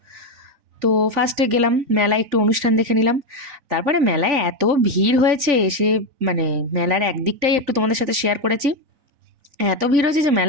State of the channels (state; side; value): late; left; 3.5 ms